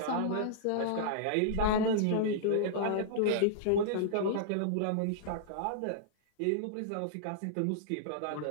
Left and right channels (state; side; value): different; both; correlation -0.02